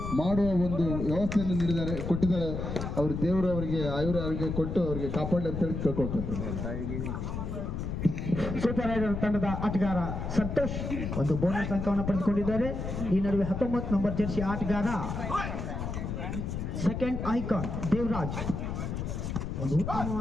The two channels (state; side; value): noise; left; rumble, 4 dB below the sound